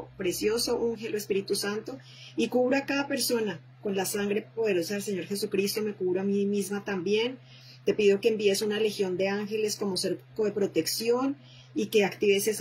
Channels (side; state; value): both; identical; correlation 1.00